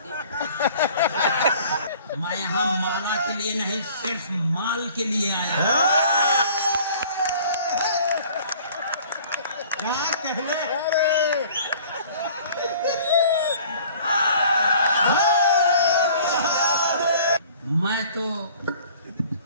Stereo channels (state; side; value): inverted; both; correlation -0.50